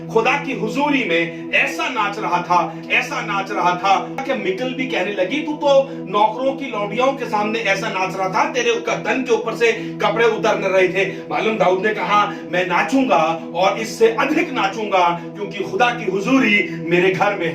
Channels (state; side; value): identical; both; correlation 1.00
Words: खुदा की हुजूरी में ऐसा नाच रहा था, ऐसा नाच रहा था कि मिकल भी कहने लगी तू तो नौकरों की लौंडियों के सामने ऐसा नाच रहा था, तेरे तन के ऊपर से कपड़े उतर रहे थे। मालूम दाऊद ने कहा मैं नाचूंगा और इससे अधिक नाचूंगा, क्योंकि खुदा की हुजूरी मेरे घर में